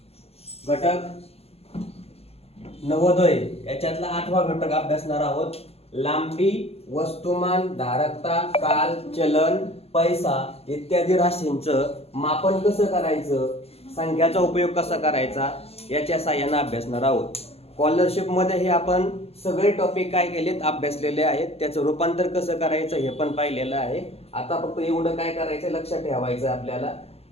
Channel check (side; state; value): right; late; 0.29 ms